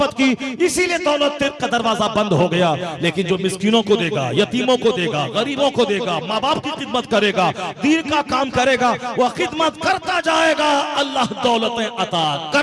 की, इसीलिए दौलत का दरवाजा बंद हो गया। लेकिन जो मिस्कीनों को देगा, यतीमों को देगा, गरीबों को देगा, माँ बाप की खिदमत करेगा, दीन का काम करेगा, वह खिदमत करता जाएगा, अल्लाह दौलतें अता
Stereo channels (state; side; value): identical; both; correlation 1.00